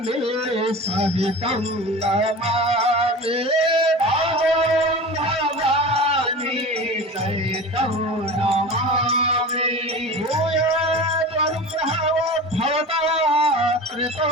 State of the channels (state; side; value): normal; both; correlation 0.33